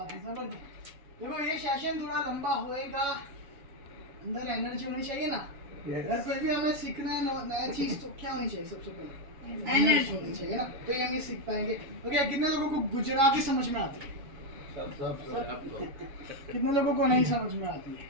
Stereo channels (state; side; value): late; left; 7.0 ms